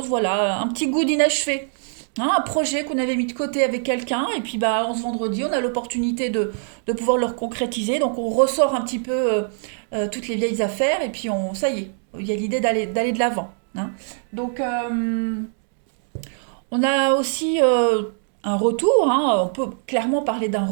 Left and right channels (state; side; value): silent; left; digital silence